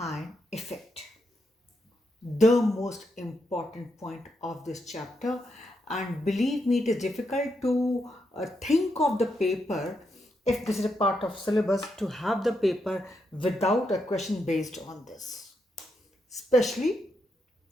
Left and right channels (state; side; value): normal; both; correlation 0.82